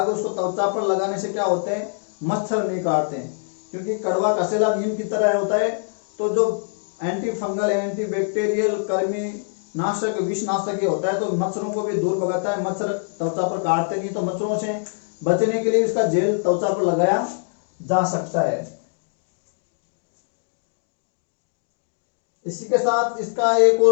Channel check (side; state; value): right; silent; digital silence